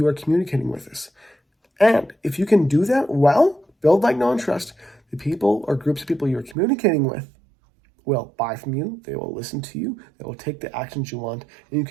are communicating with this. And if you can do that well, build like, know, and trust, the people or groups of people you're communicating with will buy from you, they will listen to you, they will take the actions you want, and you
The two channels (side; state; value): left; drops out; at 6.6 s